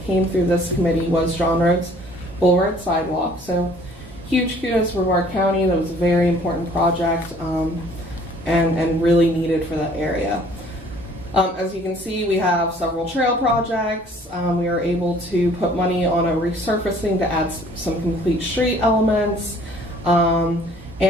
came through this committee was John Road's Bull Road Sidewalk. So huge kudos for Brevard County. That was a very important project and really needed for that area. As you can see, we have several trail projects. We are able to put money on a resurfacing to add some complete street elements, and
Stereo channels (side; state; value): both; normal; correlation 0.56